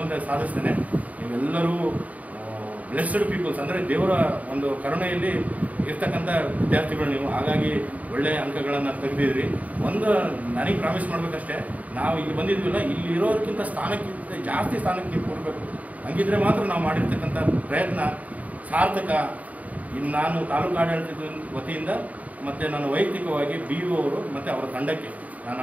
ಸಾಧಿಸ್ತಾನೆ. ನೀವೆಲ್ಲರೂ ಬ್ಲೆಸ್ಡ್ ಪೀಪಲ್ಸ್, ಅಂದರೆ ದೇವರ ಒಂದು ಕರುಣೆಯಲ್ಲಿ ಇರ್ತಕ್ಕಂಥ ವಿದ್ಯಾರ್ಥಿಗಳು ನೀವು. ಹಾಗಾಗಿ ಒಳ್ಳೆಯ ಅಂಕಗಳನ್ನು ತೆಗೆದಿದ್ರಿ. ಒಂದು ನನಗೆ ಪ್ರಾಮಿಸ್ ಮಾಡಬೇಕಷ್ಟೇ, ನಾವು ಇಲ್ಲಿ ಬಂದಿದ್ವಿಲ್ಲ, ಇಲ್ಲಿ ಇರೋದಕ್ಕಿಂತ ಸ್ಥಾನಕ್ಕಿಂತ ಜಾಸ್ತಿ ಸ್ಥಾನಕ್ಕೆ ನೀವು ಕೊಡಬೇಕು. ಹಂಗಿದ್ರೆ ಮಾತ್ರ ನಾವು ಮಾಡಿರ್ತಕ್ಕಂಥ ಪ್ರಯತ್ನ ಸಾರ್ಥಕ. ಇನ್ನು ನಾನು ತಾಲೂಕು ಆಡಳಿತದ ವತಿಯಿಂದ ಮತ್ತು ನಾನು ವೈಯಕ್ತಿಕವಾಗಿ BO ಅವರು ಮತ್ತು ಅವರ ತಂಡಕ್ಕೆ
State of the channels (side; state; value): left; late; 0.071 ms